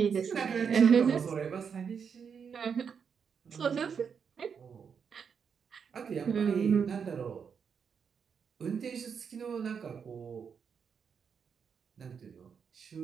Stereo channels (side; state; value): left; quieter; 6.7 dB